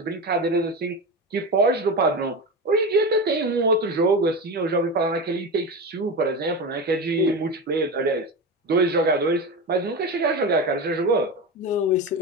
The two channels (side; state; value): both; normal; correlation 0.22